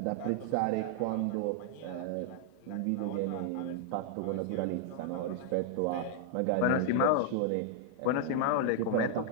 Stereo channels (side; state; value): both; different; correlation 0.00